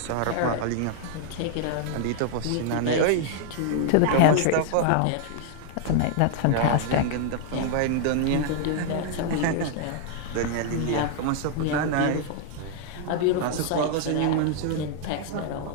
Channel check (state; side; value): different; both; correlation 0.00